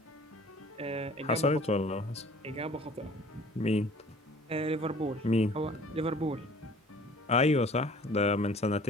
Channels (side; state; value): both; normal; correlation 0.50